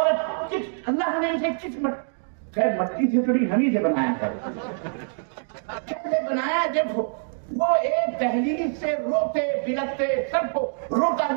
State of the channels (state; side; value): silent; left; digital silence